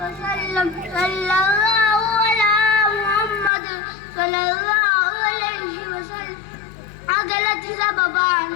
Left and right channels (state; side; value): drops out; right; at 3.5 s